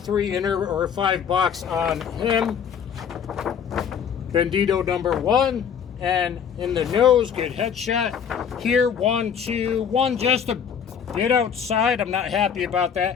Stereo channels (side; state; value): right; quieter; 7.6 dB